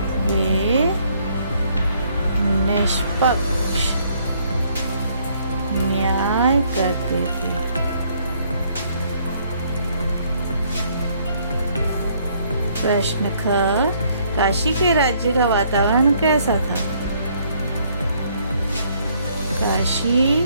वे निष्पक्ष न्याय करते थे। प्रश्न ख, काशी के राज्य का वातावरण कैसा था?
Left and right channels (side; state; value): both; inverted; correlation -0.66